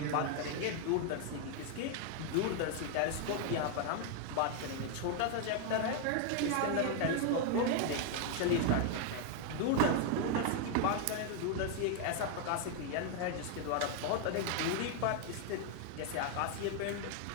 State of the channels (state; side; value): different; both; correlation 0.00